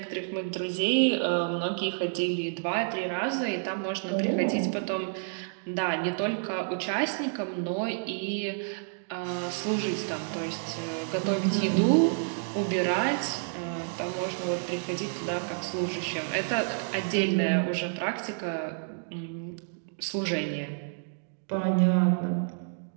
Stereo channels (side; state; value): left; silent; digital silence